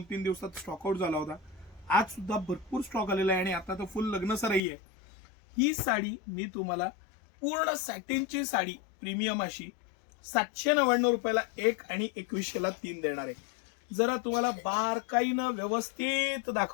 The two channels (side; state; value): right; drops out; at 4.6 s